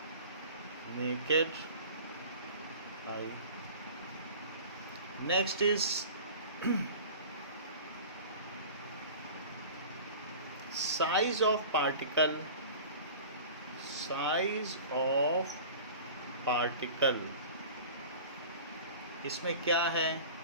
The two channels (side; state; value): both; inverted; correlation -0.40